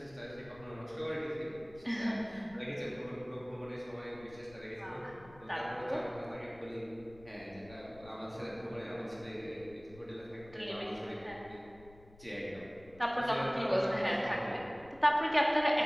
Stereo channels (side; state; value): left; noise; rumble, 22 dB below the sound